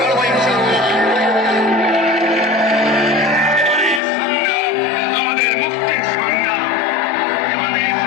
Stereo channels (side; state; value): right; drops out; at 4.0 s